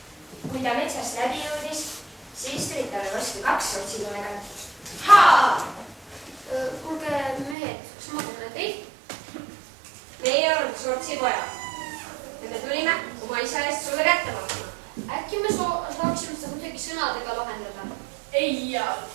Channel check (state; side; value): drops out; left; at 7.6 s